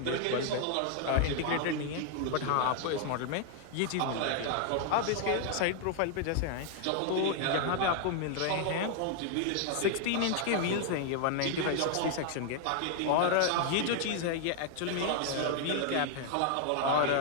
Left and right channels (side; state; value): both; different; correlation 0.00